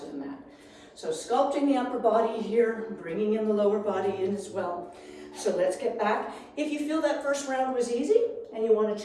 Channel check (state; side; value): identical; both; correlation 1.00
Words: the mat. So sculpting the upper body here, bringing in the lower body in as well. So let's get back. If you feel that first round was easy and you want to